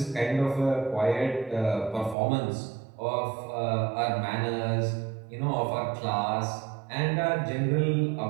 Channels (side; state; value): left; drops out; at 2.1 s